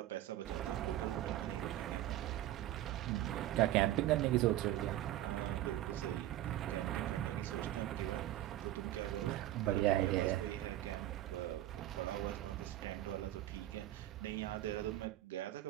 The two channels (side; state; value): left; quieter; 14.0 dB